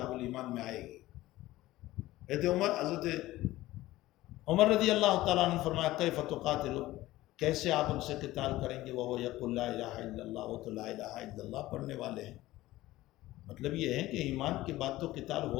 الایمان میں آئے گی، حضرت عمر رضی اللہ تعالیٰ عنہ نے فرمایا کیف تقاتل، کیسے آپ ان سے قتال کریں گے، وہ یقول لا الہ الا اللہ، وہ تو لا الہ الا اللہ پڑھنے والے ہیں۔ مطلب یہ ہے کہ ایمان کے بعد تو قتال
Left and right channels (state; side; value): quieter; right; 16.9 dB